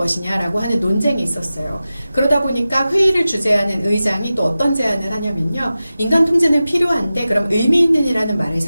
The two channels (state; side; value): inverted; both; correlation -0.95